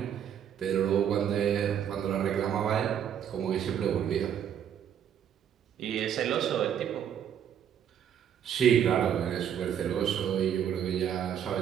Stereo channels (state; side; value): quieter; left; 9.1 dB